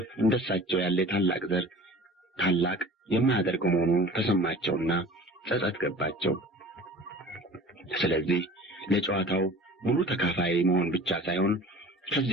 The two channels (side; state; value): both; normal; correlation 0.43